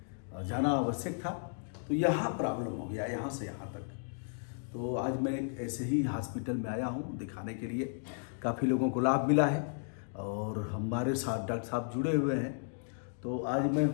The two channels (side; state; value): right; silent; digital silence